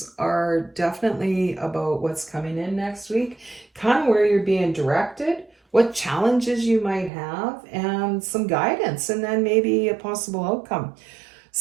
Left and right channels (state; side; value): drops out; left; at 7.1 s